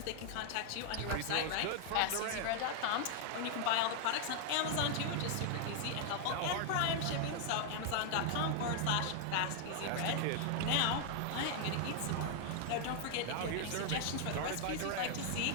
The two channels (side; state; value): both; different; correlation 0.00